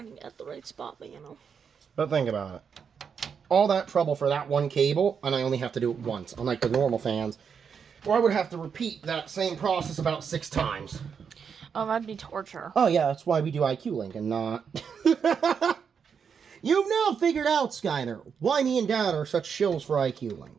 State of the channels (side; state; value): left; quieter; 6.7 dB